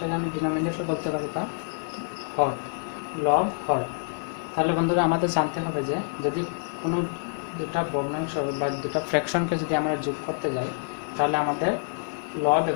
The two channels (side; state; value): right; silent; digital silence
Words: আমি ডিনোমিনেটর বলতে পারি, বা হর। লব হর। তাহলে বন্ধুরা, আমাদের জানতে হবে যে যদি কোনো দুটা ভগ্নাংশ বা দুটা ফ্র্যাকশনকে যদি আমরা যোগ করতে যাই, তাহলে আমাদের লব